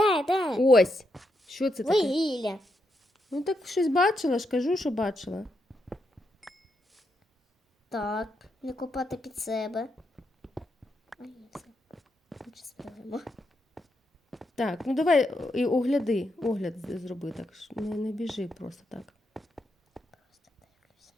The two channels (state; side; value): normal; both; correlation 0.82